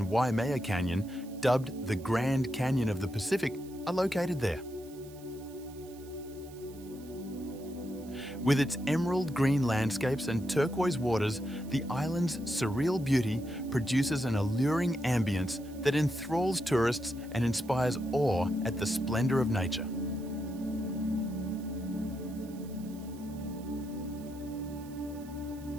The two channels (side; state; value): right; noise; hiss, 22 dB below the sound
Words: Waimea Canyon, dubbed the Grand Canyon of the Pacific, are located there. With its emerald green landscapes and turquoise waters, the island's surreal beauty produces an alluring ambience that enthralls tourists and inspires awe at the splendor of nature.